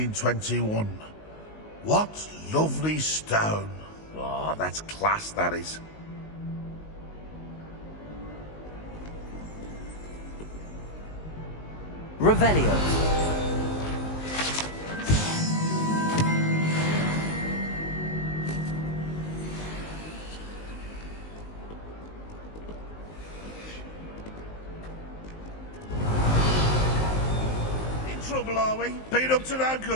What lovely stone. Oh, that's class, that is. Revelio. In trouble, are we? Beat up to no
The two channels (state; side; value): late; right; 19 ms